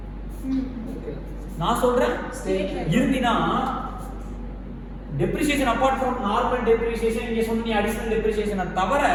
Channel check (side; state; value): both; identical; correlation 1.00